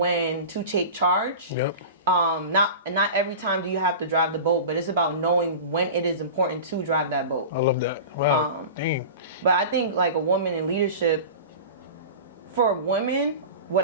to take charge. Not every time do you have to drive the boat, but it's about knowing when it is important to drive that boat. I love that. Wow. Dang. But I think like a woman in leadership, for women, what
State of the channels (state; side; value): inverted; both; correlation -0.33